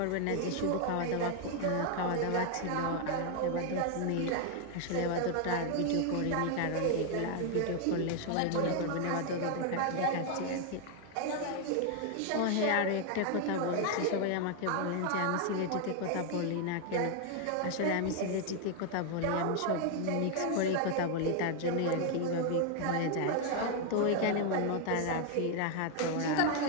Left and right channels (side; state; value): both; different; correlation 0.00